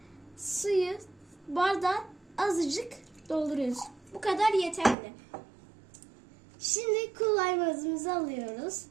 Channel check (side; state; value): left; drops out; at 5.0 s